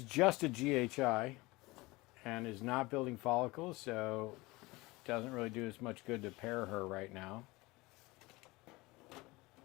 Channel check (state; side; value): quieter; right; 22.1 dB